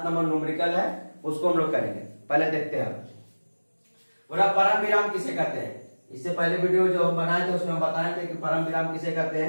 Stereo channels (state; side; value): inverted; both; correlation -1.00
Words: नंबर न्यूमेरिकल है उसको हम लोग करेंगे। पहले देखते हैं पूरा परम विराम किसे कहते हैं। इससे पहले वीडियो जो हम बनाए थे उसमें हम बताए थे कि परम विराम किसे कहते